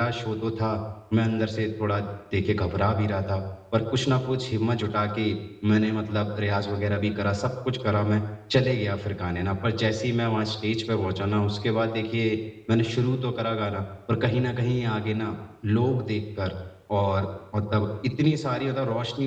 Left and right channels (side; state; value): both; identical; correlation 1.00